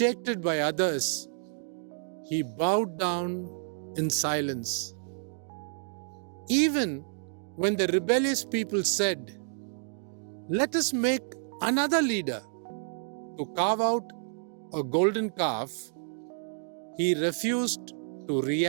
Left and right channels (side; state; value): left; silent; digital silence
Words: by others, he bowed down in silence. Even when the rebellious people said, "Let us make another leader to carve out a golden calf," he refused to